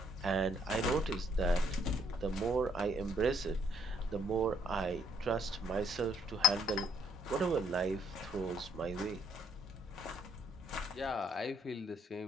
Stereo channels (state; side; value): normal; both; correlation 0.69